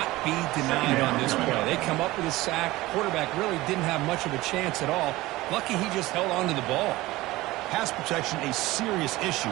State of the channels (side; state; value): left; quieter; 18.7 dB